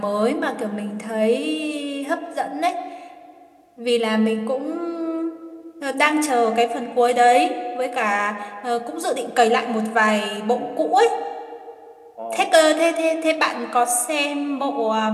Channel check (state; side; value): identical; both; correlation 1.00